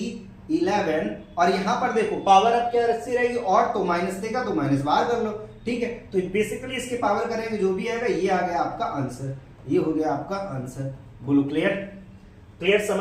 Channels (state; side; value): identical; both; correlation 1.00